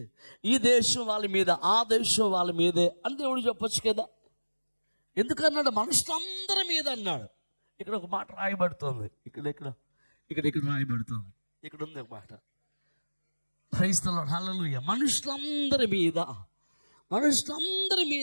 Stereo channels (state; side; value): inverted; both; correlation -1.00